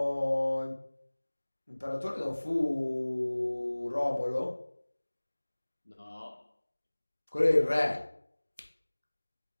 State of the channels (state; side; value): inverted; both; correlation -1.00